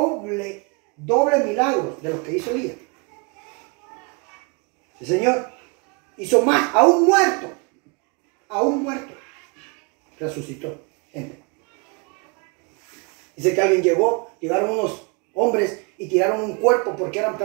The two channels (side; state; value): left; quieter; 31.9 dB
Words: milagro de lo que hizo Elías. El Señor hizo más, a un muerto, resucitó. Dice que alguien llegaron unos hombres y tiraron un cuerpo porque